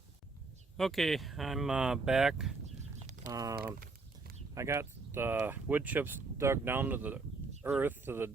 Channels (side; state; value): left; quieter; 3.9 dB